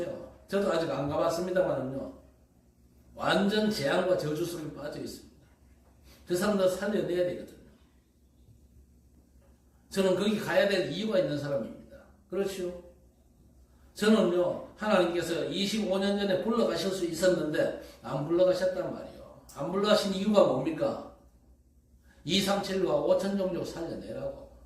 저도 아직 안 가봤습니다만은요, 완전 재앙과 저주 속에 빠져 있습니다. 그 사람들 살려내야 되거든요. 저는 거기 가야 될 이유가 있는 사람입니다. 그렇죠? 저는요, 하나님께서 25년 전에 불러가실 수 있었는데 안 불러가셨단 말이에요. 안 불러가신 이유가 뭡니까? 237과 5천 종족 살려내라고.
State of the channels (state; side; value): identical; both; correlation 1.00